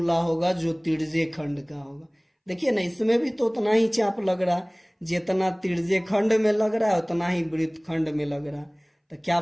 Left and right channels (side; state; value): both; identical; correlation 1.00